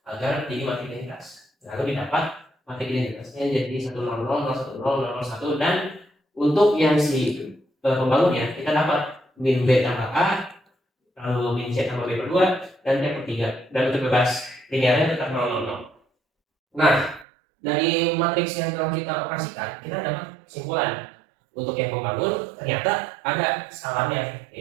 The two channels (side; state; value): left; drops out; at 17.2 s